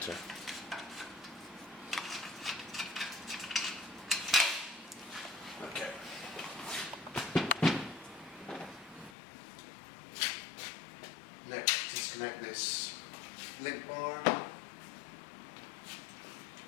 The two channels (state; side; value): drops out; right; at 9.2 s